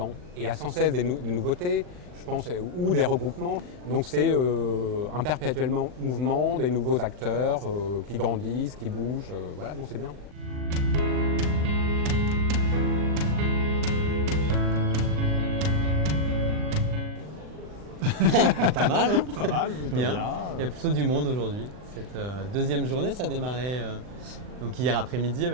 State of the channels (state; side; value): late; left; 39 ms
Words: Et à sans cesse des nouveautés, je pense, ou des regroupements. Donc c'est un perpétuel mouvement, des nouveaux acteurs qui grandissent, qui bougent. Voilà, donc c'est bien. Pas mal, hein? Pas mal, plutôt bien. Il y a plutôt du monde aujourd'hui. Cette deuxième journée, ça a démarré donc hier après-midi